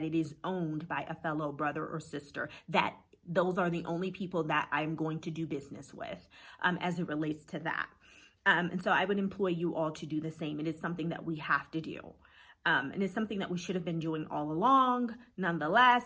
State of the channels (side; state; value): both; identical; correlation 1.00